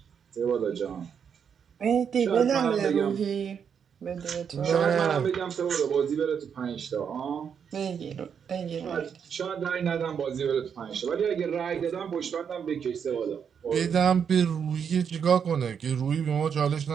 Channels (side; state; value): left; quieter; 7.3 dB